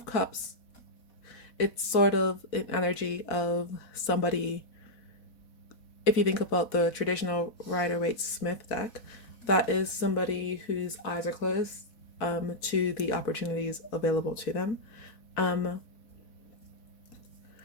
Cups, it's sort of an energy of somebody. If you think about the traditional Rider-Waite-Smith deck, that is somebody whose eyes are closed to the opportunities available to them.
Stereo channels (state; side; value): late; right; 4.1 ms